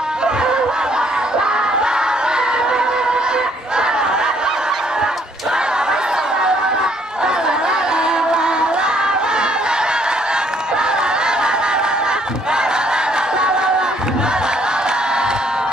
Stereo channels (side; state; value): both; normal; correlation 0.66